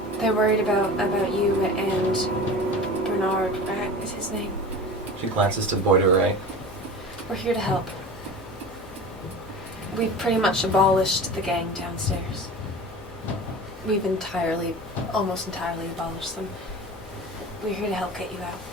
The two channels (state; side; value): normal; both; correlation 0.34